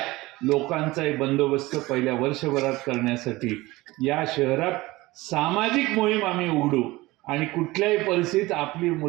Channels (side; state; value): left; quieter; 20.0 dB